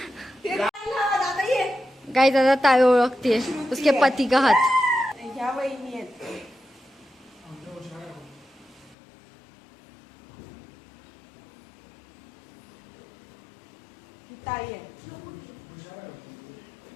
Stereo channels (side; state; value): right; drops out; at 9.0 s